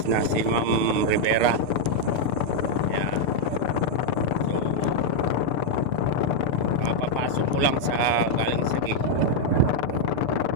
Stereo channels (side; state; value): right; late; 6.8 ms